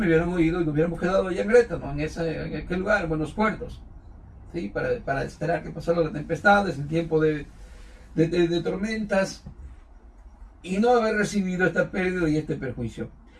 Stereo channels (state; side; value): identical; both; correlation 1.00